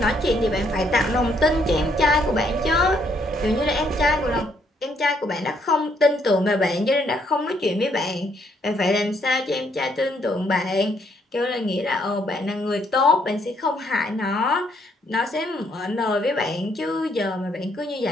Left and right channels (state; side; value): normal; both; correlation 0.70